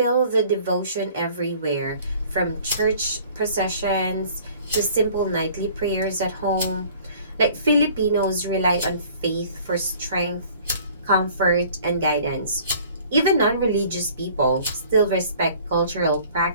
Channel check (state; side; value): inverted; both; correlation -0.52